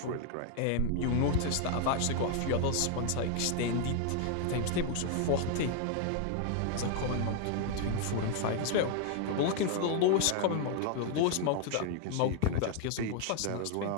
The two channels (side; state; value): both; different; correlation 0.01